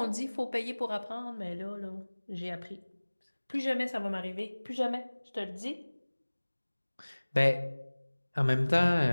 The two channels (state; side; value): inverted; both; correlation -1.00